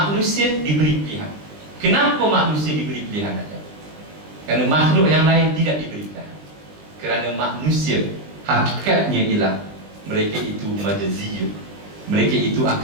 diberi pilihan. Kenapa manusia diberi pilihan saja? Kerana makhluk yang lain tidak diberi pilihan. Kerana manusia hakikatnya ialah mereka itu majaziyun. Mereka itu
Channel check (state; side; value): late; left; 20 ms